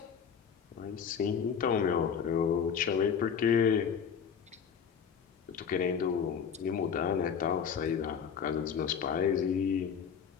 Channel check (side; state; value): right; quieter; 7.2 dB